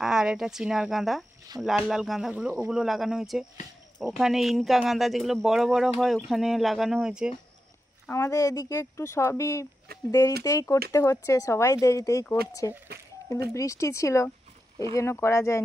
আর এটা চিনার গাঁদা, লাল লাল গাঁদাগুলো, ওগুলো লাগানো হয়েছে। ওখানে ইনকা গাঁদা যেগুলো বড় বড় হয়, ওখানে লাগানো হয়েছে। আমাদের এদিকে একটু সবই দেরিতেই করতে হচ্ছে, সবাই দেরিতেই করছে, কিন্তু বৃষ্টি ছিল এই জন্য করা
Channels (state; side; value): normal; both; correlation 0.89